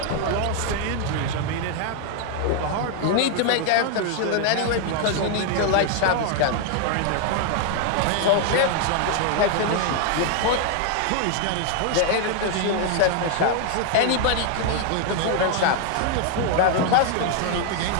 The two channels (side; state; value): both; different; correlation 0.00